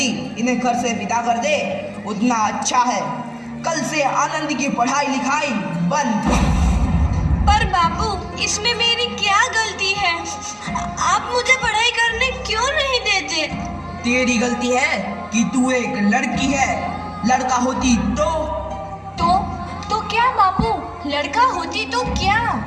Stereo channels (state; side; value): identical; both; correlation 1.00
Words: इन्हें घर से विदा कर दे उतना अच्छा है। कल से आनंद की पढ़ाई लिखाई बंद। पर बापू, इसमें मेरी क्या गलती है? आप मुझे पढ़ाई करने क्यों नहीं देते? तेरी गलती है कि तू एक लड़की है। लड़का होती तो क्या बापू? लड़का होती तो क्या?